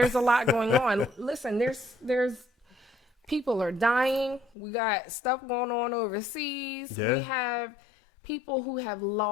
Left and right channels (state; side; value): drops out; right; at 4.5 s